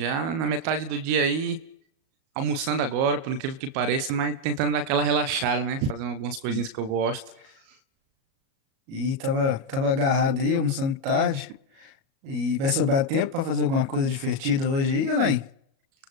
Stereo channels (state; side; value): late; left; 37 ms